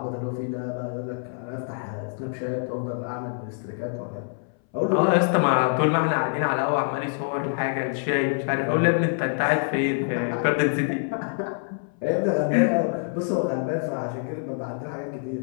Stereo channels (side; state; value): right; silent; 59 dB below the other